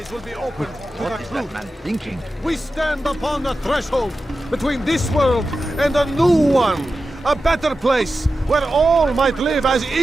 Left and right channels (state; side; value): normal; both; correlation 0.92